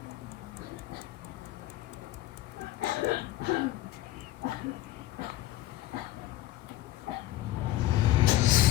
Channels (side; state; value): right; quieter; 15.4 dB